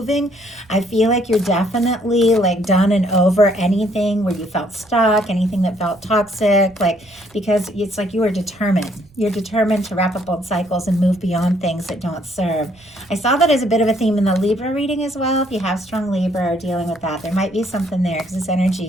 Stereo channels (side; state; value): right; noise; rumble, 29 dB below the sound